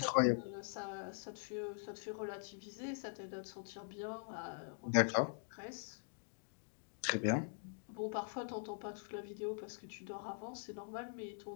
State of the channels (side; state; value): right; silent; digital silence